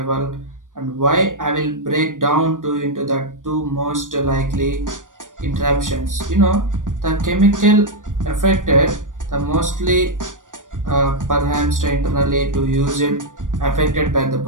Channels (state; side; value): late; left; 0.88 ms